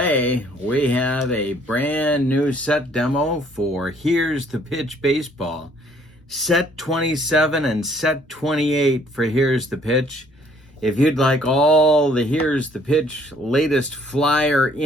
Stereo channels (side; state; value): both; normal; correlation 0.62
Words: we have a brand new set demo for Here's the Pitch Baseball. Set 27 and set 28 for Here's the Pitch. If you'd like all the Here's the Pitch latest flyer